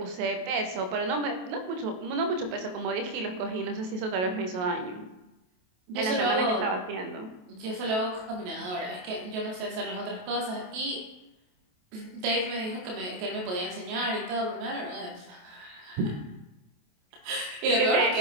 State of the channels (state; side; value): late; left; 28 ms